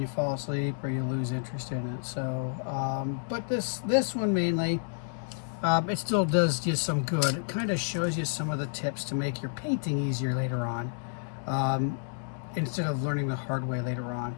fall asleep or you lose interest in it. So but this one mainly, it still does just some good. It kind of shows you some of the tips to make your painting easier later on, instead of learning the hard way later on.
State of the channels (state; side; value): silent; right; digital silence